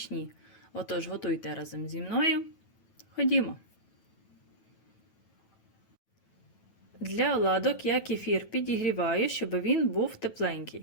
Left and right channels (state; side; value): late; right; 9.2 ms